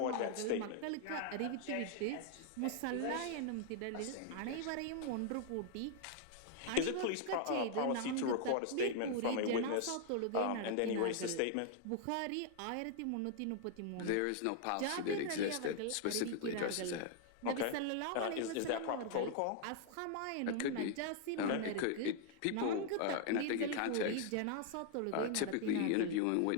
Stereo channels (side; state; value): both; different; correlation 0.00